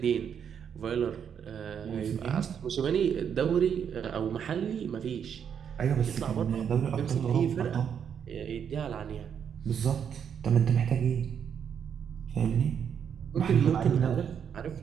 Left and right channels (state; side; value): quieter; left; 7.9 dB